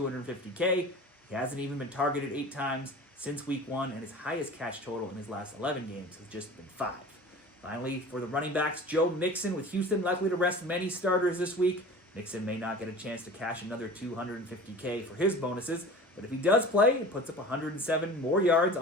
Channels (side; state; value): both; normal; correlation 0.38